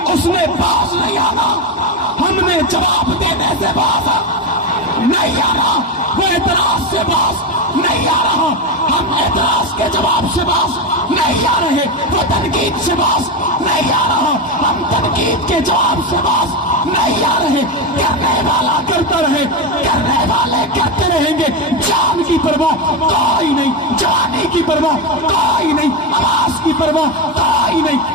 اس نے باز نہیں آنا, ہم نے جواب دینے سے باز نہیں آنا. وہ اعتراض سے باز نہیں آ رہا, ہم اعتراض کے جواب سے باز نہیں آ رہے. وہ تنقید سے باز نہیں آ رہا, ہم تنقید کے جواب سے باز نہیں آ رہے. کرنے والا کرتا رہے, کرنے والے کرتے رہیں گے. جان کی پرواہ کوئی نہیں, جوانی کی پرواہ کوئی نہیں, آواز کی پرواہ کوئی نہیں,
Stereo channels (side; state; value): both; normal; correlation 0.14